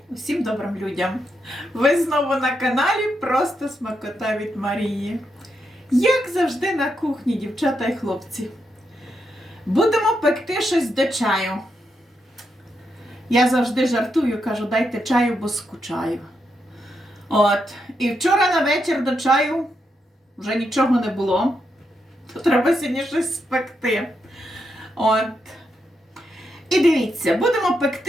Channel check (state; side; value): normal; both; correlation 0.82